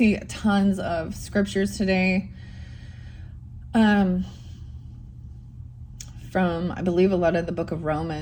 tons of scriptures today. From, I believe, a lot of the book of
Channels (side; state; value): both; identical; correlation 1.00